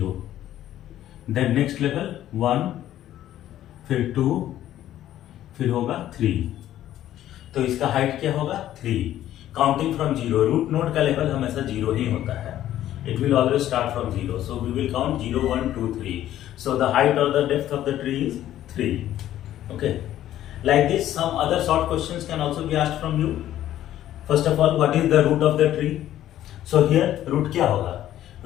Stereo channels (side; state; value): right; quieter; 12.6 dB